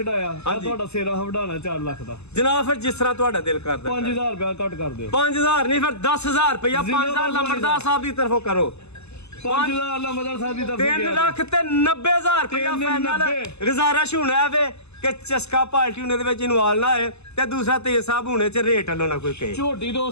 ਤੁਹਾਡਾ ਸੇਰਾ ਵਢਾਣਾ 4 ਲੱਖ ਦਾ ਜਨਾਬ। ਫਿਰ ਜਿਸ ਤਰ੍ਹਾਂ ਤੁਹਾਡਾ ਦਿਲ ਕਰਦਾ 5000 ਰੁਪਇਆ ਘੱਟ ਕਰ ਦਿਓ। 5000 ਨਹੀਂ ਫਿਰ 10,000 ਰੁਪਇਆ 5000 ਲੰਬੜਦਾਰ ਸਾਹਿਬ ਦੀ ਤਰਫੋਂ ਕਰੋ। 5000 ਲੰਬੜਦਾਰ ਸਾਹਿਬ ਦੀ ਤਰਫੋਂ 3 ਲੱਖ ਤੇ 90,000 ਰੁਪਇਆ ਫਾਈਨਲ ਗੁਜ਼ਾਰਿਸ਼ ਹੋਣਾ ਵੇ ਕਿ ਚਸਕਾ ਪਾਰਟੀ ਉਹਨੇ ਦੇ ਵਿੱਚ ਇਨਵਾਲ ਨਾ ਹੋਏ ਤੇ ਦੂਸਰਾ ਤੇਜ ਸਾਹਿਬ ਹੋਣੇ ਚ ਰੇਟ ਵੱਲੋਂ ਨਾ ਕੋਈ ਕਹੇ। ਝੋਟੀ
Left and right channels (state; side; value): late; right; 0.80 ms